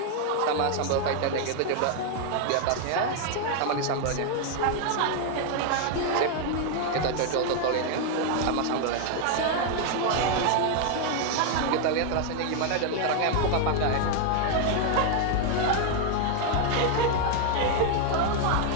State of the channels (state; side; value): different; both; correlation 0.01